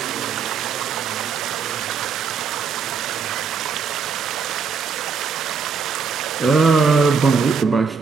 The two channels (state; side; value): quieter; left; 5.6 dB